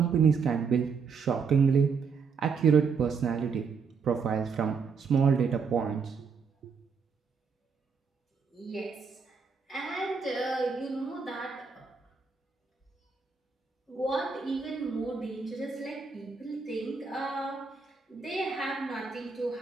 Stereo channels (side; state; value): left; quieter; 5.4 dB